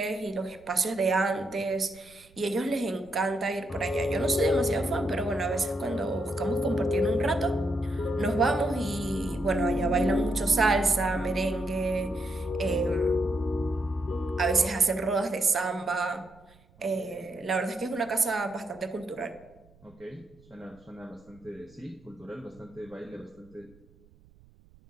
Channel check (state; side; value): noise; right; rumble, 28 dB below the sound